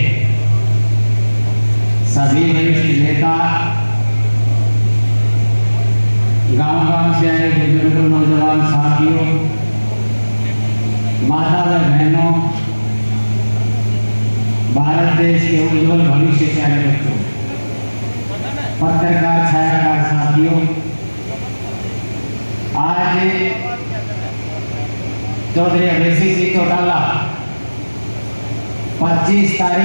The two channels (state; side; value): inverted; both; correlation -1.00